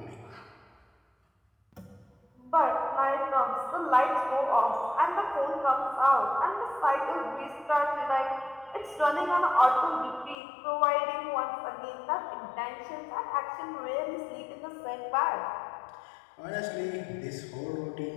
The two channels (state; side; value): drops out; right; at 10.4 s